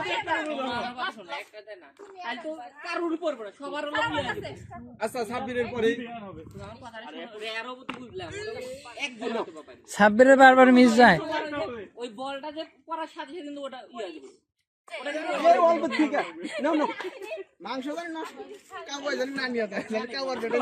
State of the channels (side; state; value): both; identical; correlation 1.00